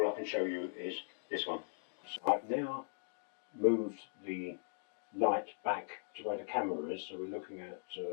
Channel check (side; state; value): right; silent; digital silence